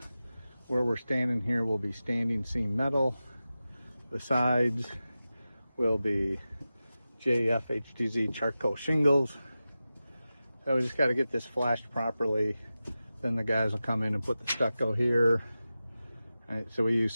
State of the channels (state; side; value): inverted; both; correlation -0.94